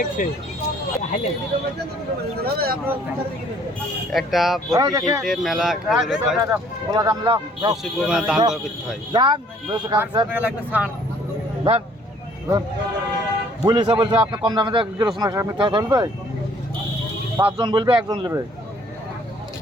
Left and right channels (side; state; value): both; normal; correlation 0.59